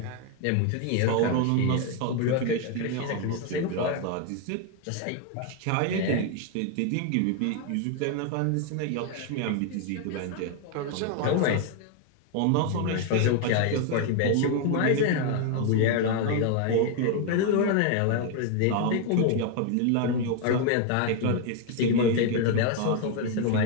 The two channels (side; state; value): both; different; correlation 0.01